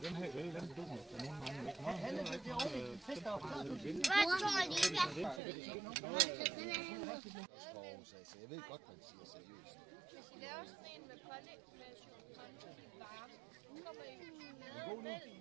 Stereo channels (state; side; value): drops out; left; at 5.4 s